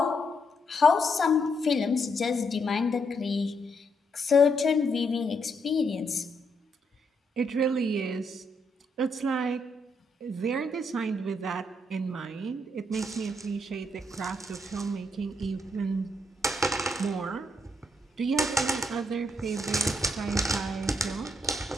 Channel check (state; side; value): normal; both; correlation 0.76